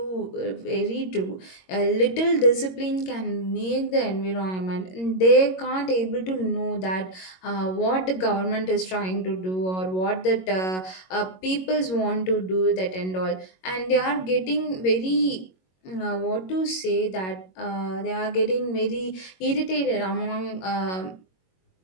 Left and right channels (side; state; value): right; late; 22 ms